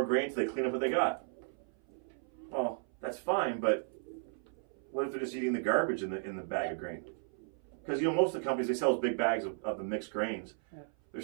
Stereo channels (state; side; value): silent; left; 55 dB below the other